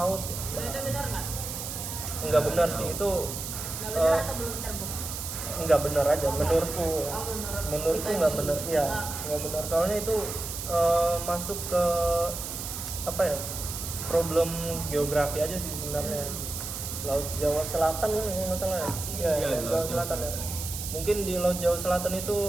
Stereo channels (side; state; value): right; noise; hiss, 6 dB below the sound